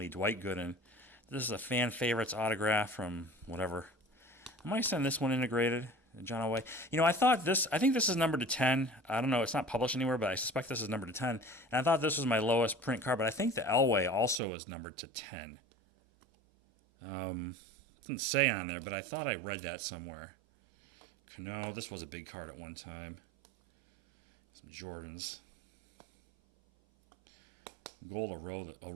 Dwight Gooden. This is a fan favorites autograph from whatever. I might send this one integrated. John Elway. I think this is numbered to 10. I don't know. It's not published anywhere, but I suspect this is numbered to 10. And I thought this was my lowest print card, but I think the Elway also is numbered to 10. It didn't say on there, but I thought I read that somewhere. No, this was a big card at one time. Some Jordans. Gold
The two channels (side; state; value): left; drops out; at 14.4 s